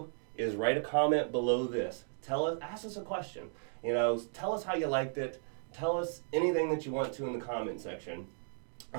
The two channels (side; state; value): left; silent; digital silence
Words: is write a comment below this. Ask us a question. Tell us how you liked it. Tell us anything that you want to in the comment section.